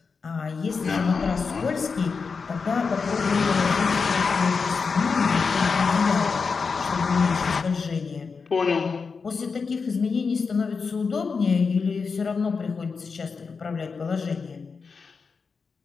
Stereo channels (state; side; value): quieter; right; 5.1 dB